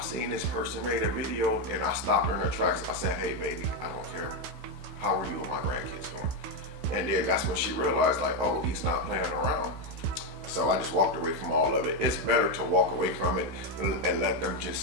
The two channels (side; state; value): left; late; 16 ms